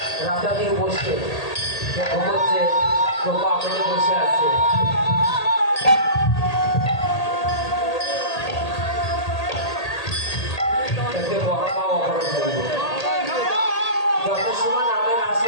রাস্তা দিয়ে বসে ঘুমোচ্ছে, তো পা মেলে বসে আছে। যত সময় নামের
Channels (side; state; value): right; late; 1.8 ms